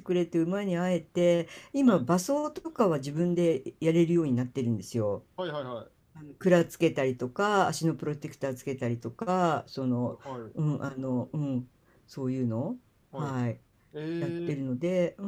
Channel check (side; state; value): both; identical; correlation 1.00